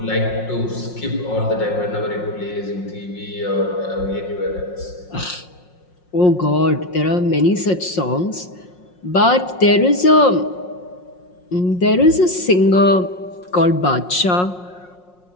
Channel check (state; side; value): late; right; 5.6 ms